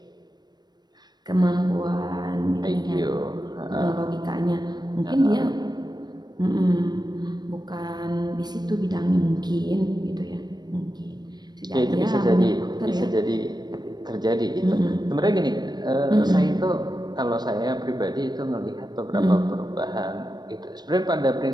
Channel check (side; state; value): left; late; 0.20 ms